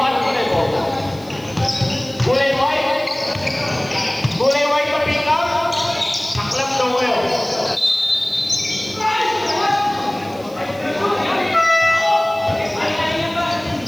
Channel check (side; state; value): right; noise; hiss, 24 dB below the sound